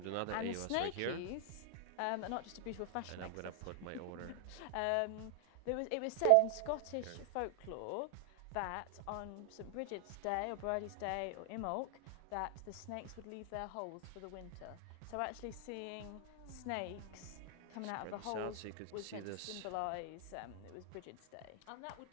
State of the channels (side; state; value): both; different; correlation 0.00